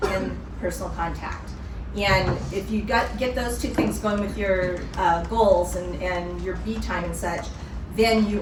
and personal contact. And if you get those two things going with your goals and your B time and such, then you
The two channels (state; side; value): identical; both; correlation 1.00